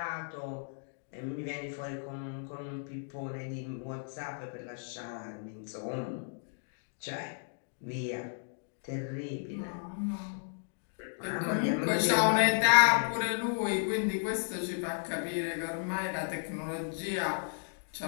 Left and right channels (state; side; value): silent; right; digital silence